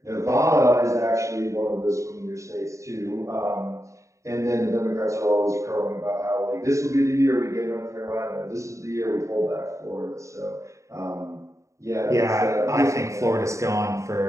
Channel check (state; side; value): late; left; 0.15 ms